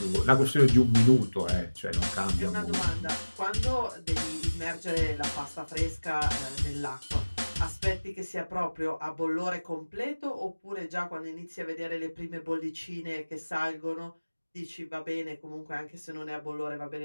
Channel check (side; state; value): both; inverted; correlation -1.00